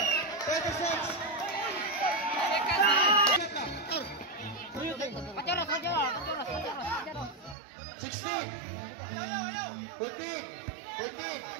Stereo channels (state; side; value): drops out; left; at 7.6 s